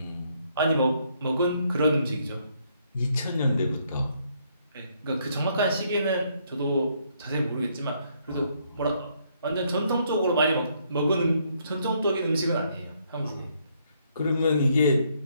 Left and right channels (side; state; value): both; inverted; correlation -0.71